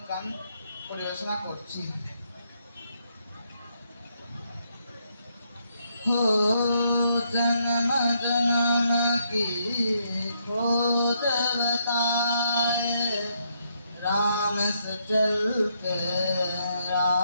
গান পরিবেশনা করছি। हो जन्म जन्म की खोज बताए, राम से चल के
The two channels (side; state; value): both; inverted; correlation -0.75